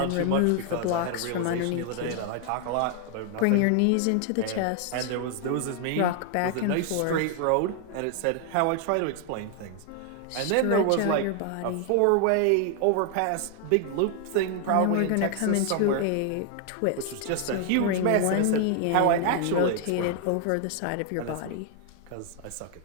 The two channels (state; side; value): different; both; correlation 0.00